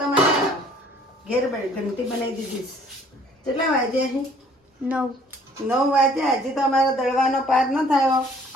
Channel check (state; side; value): normal; both; correlation 0.57